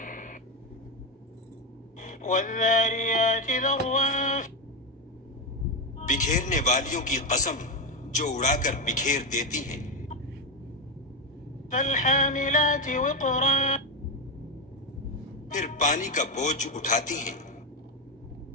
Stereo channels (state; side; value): normal; both; correlation 0.11